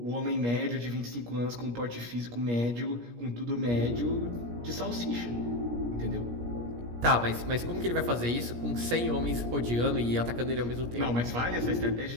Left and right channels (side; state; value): left; late; 17 ms